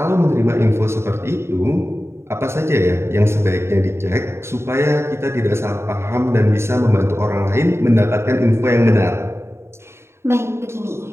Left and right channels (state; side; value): late; left; 0.13 ms